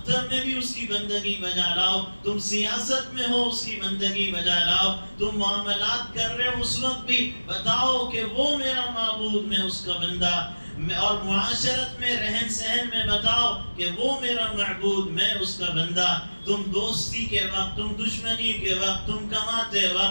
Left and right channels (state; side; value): inverted; both; correlation -1.00